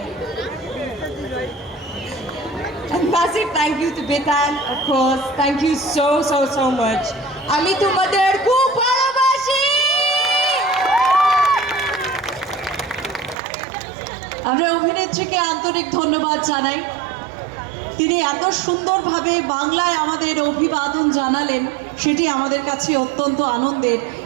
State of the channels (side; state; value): left; drops out; at 13.4 s